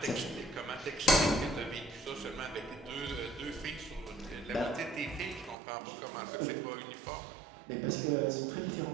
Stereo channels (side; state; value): left; drops out; at 5.6 s